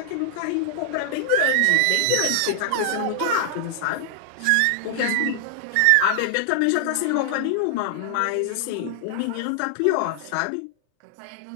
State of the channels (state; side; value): different; both; correlation -0.01